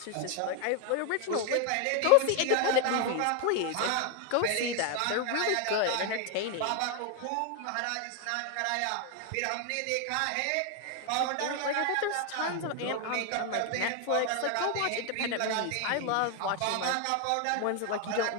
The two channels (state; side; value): different; both; correlation 0.01